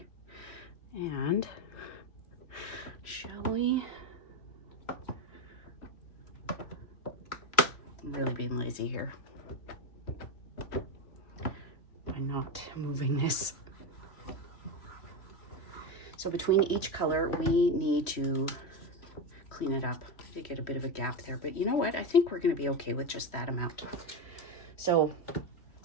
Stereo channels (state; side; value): late; right; 3.0 ms